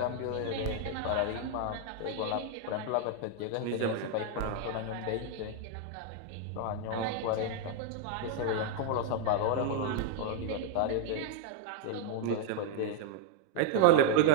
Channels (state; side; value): different; both; correlation 0.00